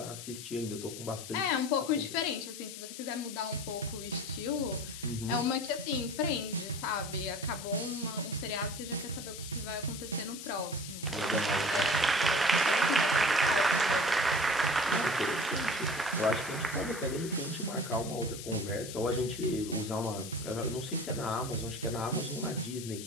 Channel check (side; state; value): left; noise; hiss, 11 dB below the sound